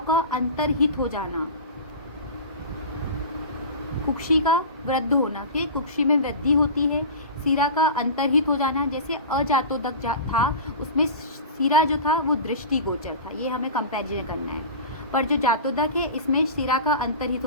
का अंतर्हित हो जाना, कुक्षी का वृद्ध होना, फिर कुक्षी में वृद्धि होती है, सिरा का अंतर्हित हो जाना। जैसे अजातोदक था उसमें सिरा जो था वो दृष्टिगोचर था, ये हमें कंपैरिजन करना है। पर जो जातोदक है इसमें सिरा का अंतर्हित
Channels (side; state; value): both; inverted; correlation -0.32